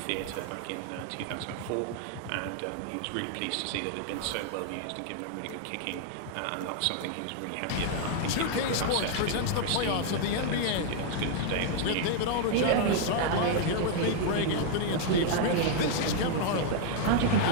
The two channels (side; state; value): both; different; correlation 0.00